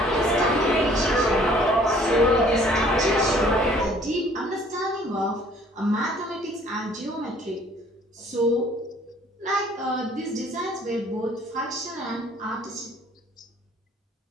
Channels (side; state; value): both; normal; correlation 0.57